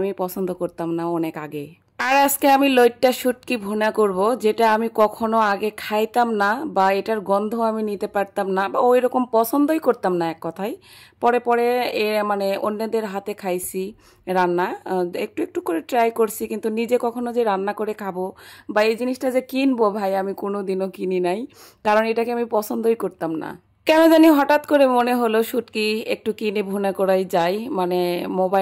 পছন্দ করতাম না অনেক আগে। আর আজকে আমি লইট্টা শুটকি ভুনা করব, যেটা আমি কখনো আগে খাইতাম না, বা এটার গন্ধ আমি নিতে পারতাম না, বা ওই রকম পছন্দই করতাম না এক কথায়। পরে পরে মানে অন্যদের হাতে খাইছি রান্না, একটু একটু করে ট্রাই করছি, কিন্তু নিজে কখনো যে রান্না করে খাবো বা এই জিনিসটা যে কিনবো, ভাই আমি কোনোদিনও কিনি নাই, কারণ এটাকে আমি পছন্দই করতাম না। কেন জানি হঠাৎ করে মনে হলো শুটকি একটু কিনে ভুনা করাই যায়। মানে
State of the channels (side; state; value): both; identical; correlation 1.00